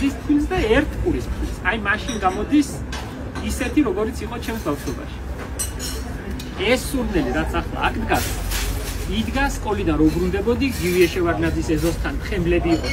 ფქვილს და 1 ყურის ფქვილს. აი მაშინ გამოდის ისეთი, როგორიც იყო ჩემს ბავშვობაში. ეს სურნელი, რაც ახლა აქ დგას, იდგას სკოლიდან რო ბრუნდებოდი, გივიე შევარდნაძის ეზოსთან ხემლები იყო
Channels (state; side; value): identical; both; correlation 1.00